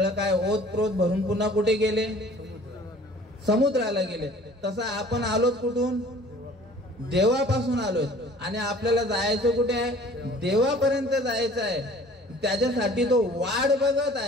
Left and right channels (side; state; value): both; normal; correlation 0.50